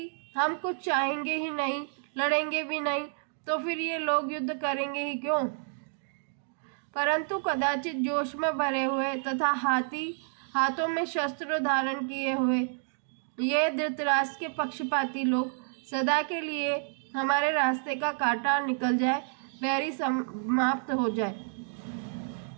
हम कुछ चाहेंगे ही नहीं, लड़ेंगे भी नहीं, तो फिर ये लोग युद्ध करेंगे ही क्यों। परंतु कदाचित जोश में भरे हुए तथा हाथों में शस्त्र धारण किए हुए ये धृतराष्ट्र के पक्षपाती लोग सदा के लिए हमारे रास्ते का कांटा निकल जाए, बैरी समाप्त हो जाए,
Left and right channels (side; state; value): left; silent; 58 dB below the other